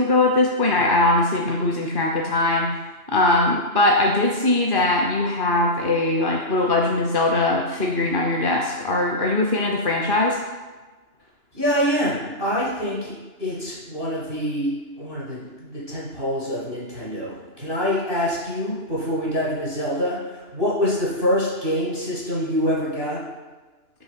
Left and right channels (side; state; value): left; late; 2.9 ms